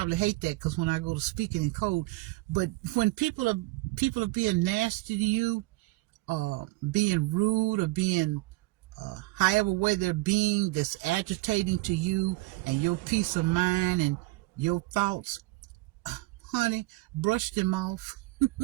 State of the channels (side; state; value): left; quieter; 21.1 dB